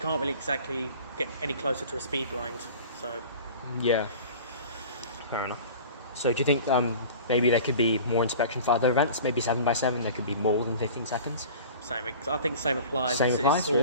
really exactly get any closer to a speed blind. So yeah, fair enough. So do you think maybe there could be more inspection for other events? Maybe 7x7, there could be more than 15 seconds? I think the same applies. It's all,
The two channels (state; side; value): inverted; both; correlation -0.41